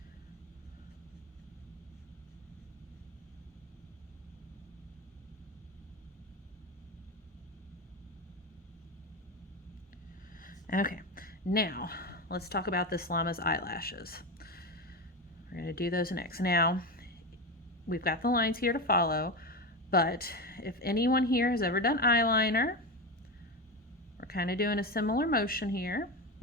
Okay, now let's talk about this llama's eyelashes. We're going to do those next. Now, we've got the lines here to follow, but if anyone here has ever done eyeliner, we're kind of doing a similar motion here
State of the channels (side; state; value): both; normal; correlation 0.19